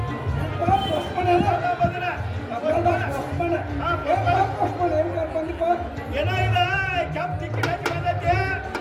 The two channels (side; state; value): both; identical; correlation 1.00